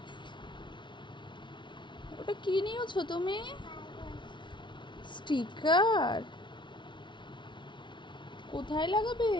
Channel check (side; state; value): right; late; 0.23 ms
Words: ওটা কি নিয়েছো তুমি? স্টিকার? কোথায় লাগাবে?